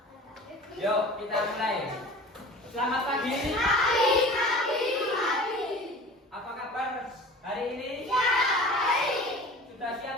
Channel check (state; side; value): normal; both; correlation 0.40